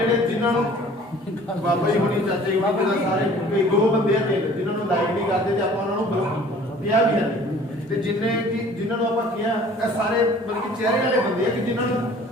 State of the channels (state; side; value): normal; both; correlation 0.50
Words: ਜਿਨ੍ਹਾਂ ਨੂੰ ਬਾਬਾ ਜੀ ਹੋਣੀ, ਚਾਚੇ ਜੀ ਬਾਬਾ ਜੀ ਸਾਰੇ ਕੋਈ ਦੋ ਬੰਦੇ ਆ ਜਿਨ੍ਹਾਂ ਨੂੰ ਲਾਈਕ ਨਹੀਂ ਕਰਦੇ ਤੇ ਆਪਾਂ ਉਹਨਾਂ ਨੂੰ ਕਿਹਾ ਵੀ ਹੈ, ਤੇ ਜਿਨ੍ਹਾਂ ਨੂੰ ਆਪਾਂ ਕਿਹਾ ਇਹ ਸਾਰੇ ਬਲਕਿ ਚਿਹਰੇ ਵਾਲੇ ਬੰਦੇ ਆ ਕਿ ਜਿਨ੍ਹਾਂ ਨੂੰ